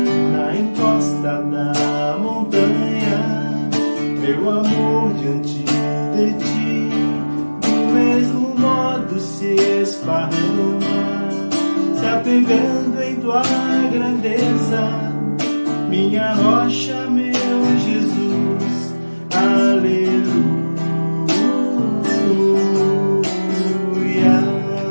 na encosta da montanha, meu amor diante de ti, do mesmo modo se esparrama, se apegando em tua grandeza, minha rocha, meu Jesus. Aleluia.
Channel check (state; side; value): inverted; both; correlation -1.00